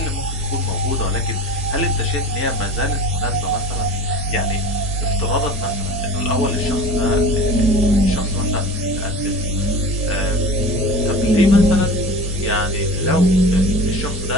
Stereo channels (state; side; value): normal; both; correlation 0.36